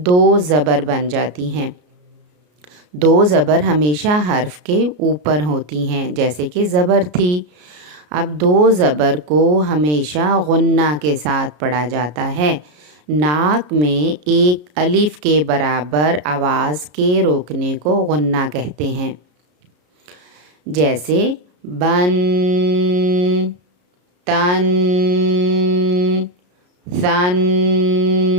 دو زبر بن جاتی ہیں۔ دو زبر ہمیشہ حرف کے اوپر ہوتی ہیں، جیسے کہ زبر تھی۔ اب دو زبر کو ہمیشہ غنہ کے ساتھ پڑھا جاتا ہے۔ ناک میں ایک الف کے برابر آواز کے روکنے کو غنہ کہتے ہیں، جیسے بن، تن، ثن۔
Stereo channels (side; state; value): left; late; 33 ms